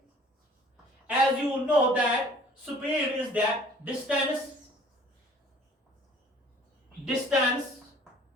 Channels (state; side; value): normal; both; correlation 0.53